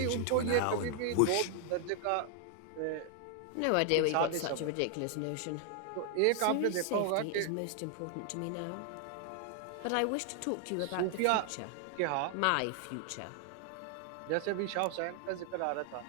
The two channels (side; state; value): both; different; correlation 0.00